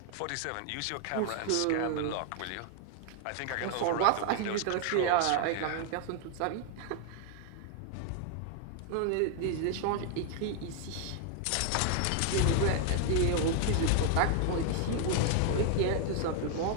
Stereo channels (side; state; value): both; different; correlation 0.00